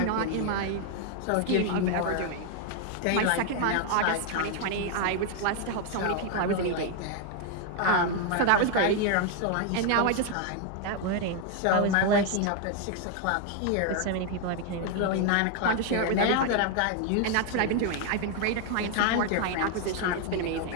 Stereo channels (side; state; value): both; different; correlation 0.00